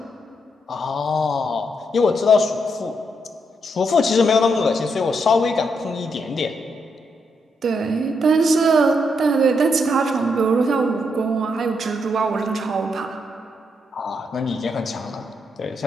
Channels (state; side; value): normal; both; correlation 0.79